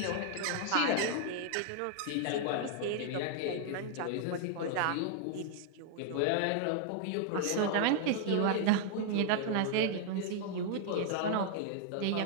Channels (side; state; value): both; different; correlation 0.00